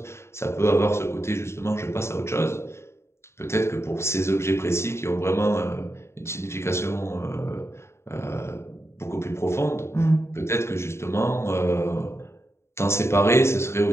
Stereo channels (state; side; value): late; right; 0.13 ms